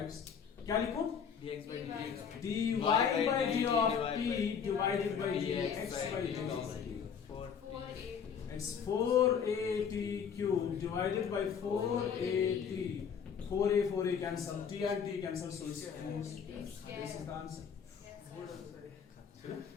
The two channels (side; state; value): right; quieter; 7.1 dB